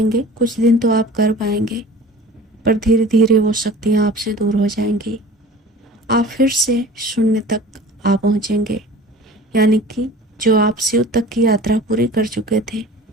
कुछ दिन तो आप कर पाएंगे, पर धीरे धीरे वो शक्तियाँ आपसे दूर हो जाएंगी। आप फिर से शून्य तक आ पहुँचेंगे, यानी कि जो आप शिव तक की यात्रा पूरी कर चुके थे,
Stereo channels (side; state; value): both; normal; correlation 0.41